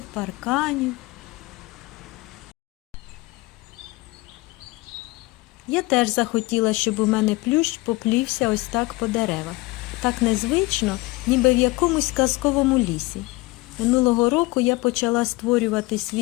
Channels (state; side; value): quieter; right; 21.7 dB